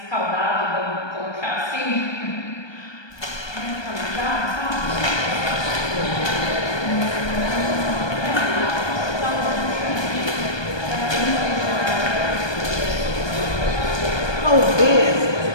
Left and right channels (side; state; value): right; late; 1.2 ms